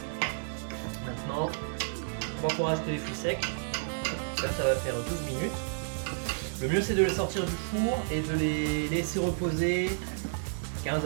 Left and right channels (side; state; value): left; silent; digital silence